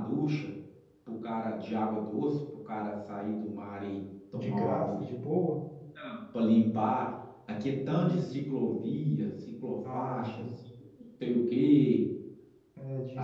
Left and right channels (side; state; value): both; identical; correlation 1.00